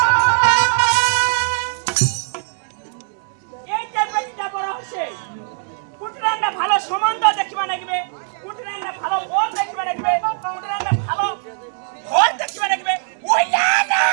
এই যে বেটিটা বড় হচ্ছে কুটরান্না ভালো সম্বন্ধ দেখিবা লাগবে কুটরান্না ভালো বল দেখিবা লাগবে কুটরান্না ভালো ঘর দেখিবা লাগবে ওইলা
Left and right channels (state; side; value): silent; left; digital silence